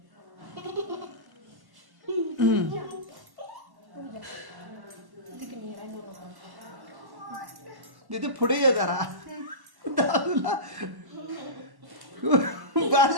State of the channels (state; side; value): late; left; 1.1 ms